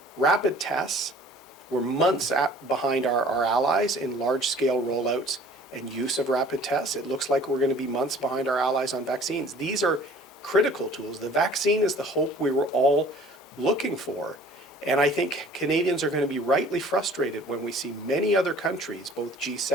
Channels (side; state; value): both; normal; correlation 0.50